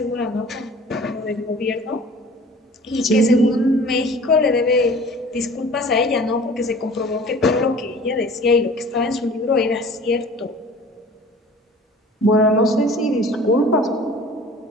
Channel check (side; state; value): both; normal; correlation 0.45